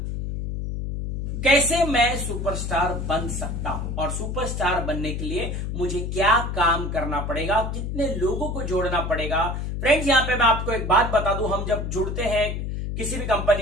कैसे मैं सुपरस्टार बन सकता हूं, और सुपरस्टार बनने के लिए मुझे क्या काम करना पड़ेगा, कितने लोगों को जोड़ना पड़ेगा। फ्रेंड्स, यहां पे मैं आपको एक बात बता दूं, हम जब जुड़ते हैं किसी भी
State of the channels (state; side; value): noise; left; hum, 3 dB below the sound